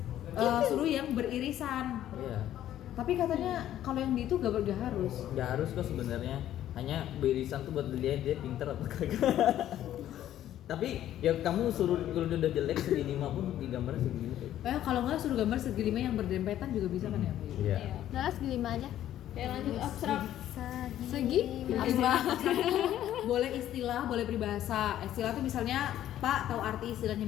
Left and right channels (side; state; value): right; quieter; 12.1 dB